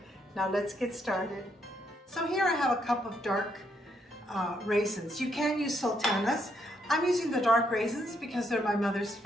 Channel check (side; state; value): both; normal; correlation 0.75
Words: Now let's get started. So here I have a cup of dark raisins. You can use sultanas. I'm using the dark raisins because they're my mother's